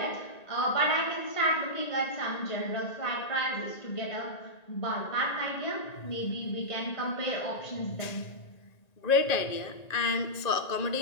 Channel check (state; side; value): late; right; 1.9 ms